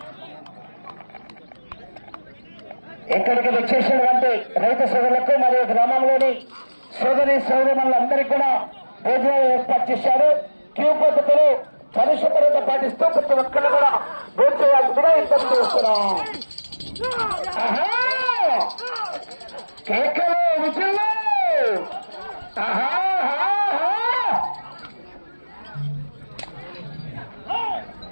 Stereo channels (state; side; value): inverted; both; correlation -1.00